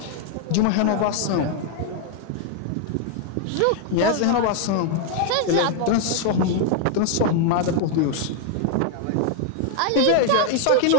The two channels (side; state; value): both; different; correlation 0.00